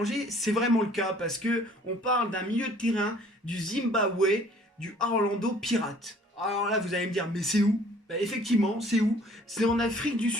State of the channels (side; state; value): both; normal; correlation 0.55